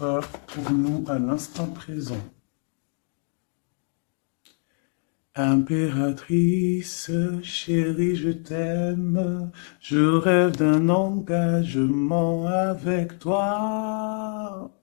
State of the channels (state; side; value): silent; right; 56 dB below the other